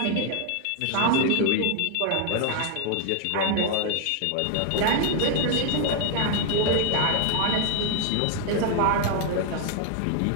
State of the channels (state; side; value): different; both; correlation 0.00